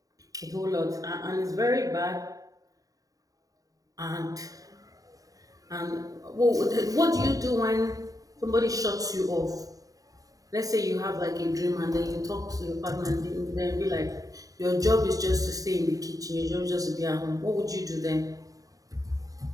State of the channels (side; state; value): left; late; 0.17 ms